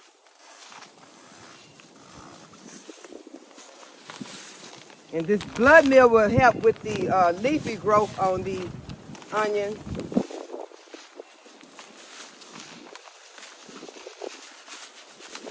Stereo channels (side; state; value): both; identical; correlation 1.00